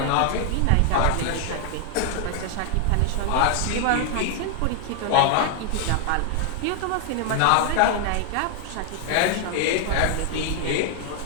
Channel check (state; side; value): different; both; correlation 0.00